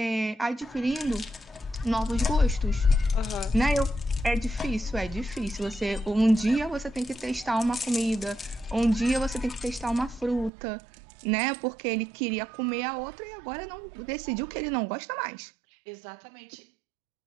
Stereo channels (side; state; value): left; drops out; at 10.5 s